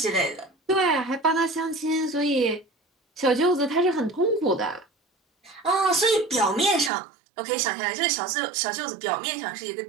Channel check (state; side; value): drops out; left; at 6.9 s